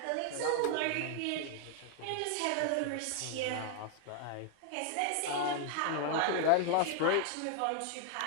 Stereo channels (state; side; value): different; both; correlation 0.00